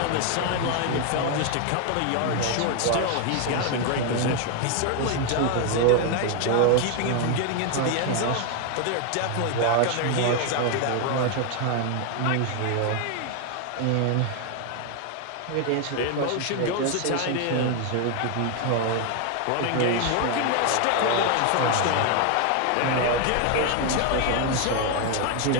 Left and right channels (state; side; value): different; both; correlation 0.01